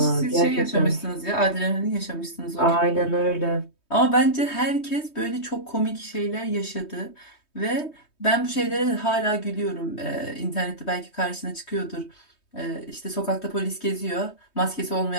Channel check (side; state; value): right; late; 3.2 ms